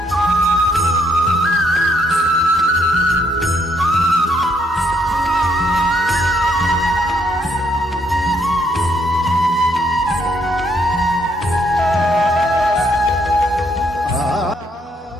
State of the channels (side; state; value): both; normal; correlation 0.71